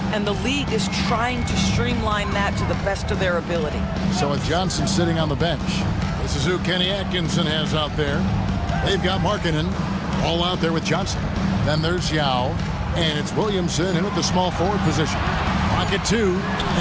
and the league is trying to streamline that to the best of their ability. So with Johnson sitting on the bench, this is who Kenny Atkinson has out there. They've got Markkanen all out there with Johnson. Then there's Yao, and it's Williamson in at the small forward position. Pocket two,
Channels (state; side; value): identical; both; correlation 1.00